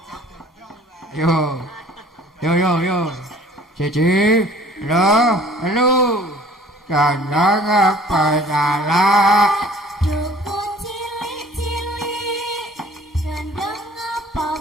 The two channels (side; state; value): both; normal; correlation 0.52